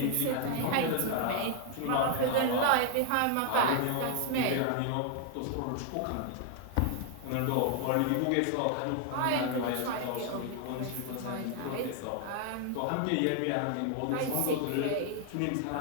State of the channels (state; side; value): different; both; correlation 0.00